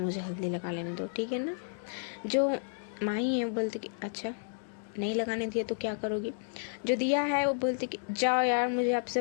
हल्दी लगा लेने दो, ठीक है ना। जो माही है वो बोलती कि अच्छा नहीं लगाने दिया तो क्या करोगी। जो दिया है वो बोलती कि जाओ यार, मुझे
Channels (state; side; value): silent; right; digital silence